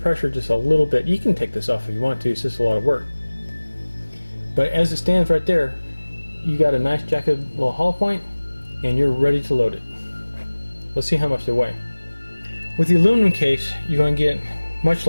just a little bit. You can take this off if you want to, it's just a lot of work. But as it stands right there, you got a nice jacketed little hollow point, and you're ready to load it. Let's see how much they weigh. With the aluminum case, you're going to get much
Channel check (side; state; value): both; inverted; correlation -1.00